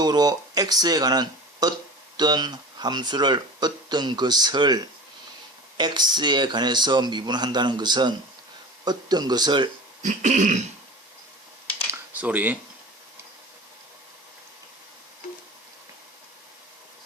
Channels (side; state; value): both; normal; correlation 0.35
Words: x에 관한 어떤 함수를, 어떤 것을 x에 관해서 미분한다는 것은 어떤 것을